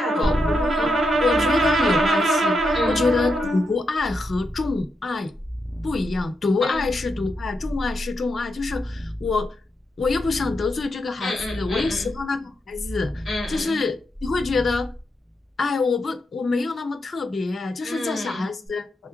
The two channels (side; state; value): both; normal; correlation 0.84